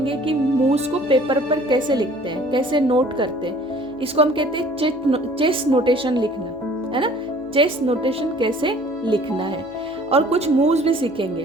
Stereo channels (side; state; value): left; noise; hum, 29 dB below the sound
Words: कि मूव्स को पेपर पर कैसे लिखते हैं, कैसे नोट करते हैं। इसको हम कहते हैं चेस नोटेशन लिखना, है ना। चेस नोटेशन कैसे लिखना है, और कुछ मूव्स भी